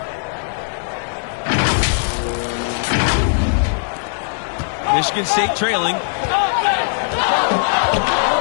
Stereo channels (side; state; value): right; silent; digital silence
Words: Michigan State trailing.